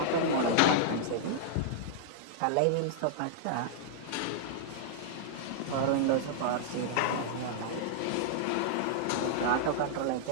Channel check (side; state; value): both; different; correlation -0.02